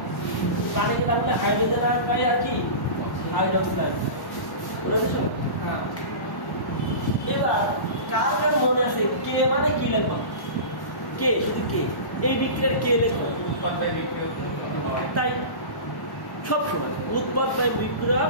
পানি কিন্তু আপনি হাইড্রোজেন আর পাই আর কি হাইড্রোক্সিল বুঝেছো হ্যাঁ এবার কার কার মনে আছে কে মানে কি লিখবা কে শুধু কে এই বিক্রিয়ার কে লিখো উৎপাদন বিক্রিয়া তাই সব সময় উৎপাদ বাই বিক্রিয়া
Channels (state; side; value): late; right; 1.1 ms